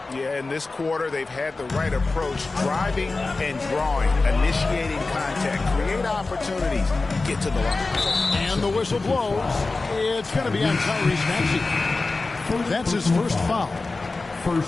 Yeah, in this quarter, they've had the right approach, driving and drawing, initiating contact, create opportunities, get to the line. And the whistle blows. It's going to be on Tyrese Maxey. That's his first foul.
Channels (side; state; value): right; quieter; 3.6 dB